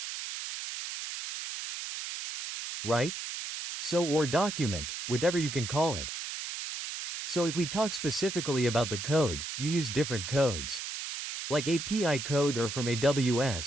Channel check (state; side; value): noise; right; hiss, 6 dB below the sound